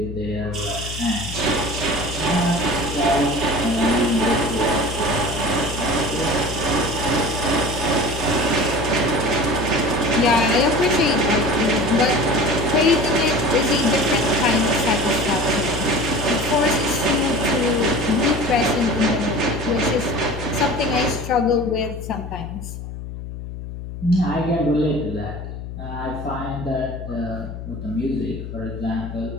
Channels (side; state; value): left; noise; hum, 9 dB below the sound